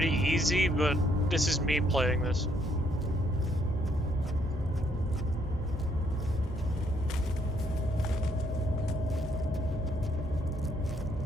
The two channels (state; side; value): normal; both; correlation 0.70